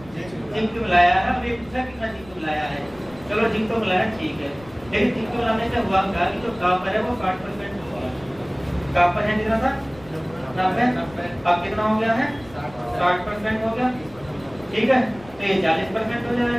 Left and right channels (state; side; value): noise; left; rumble, 21 dB below the sound